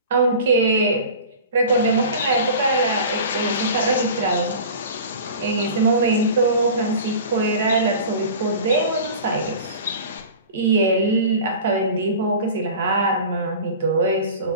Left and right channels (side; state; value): both; inverted; correlation -0.37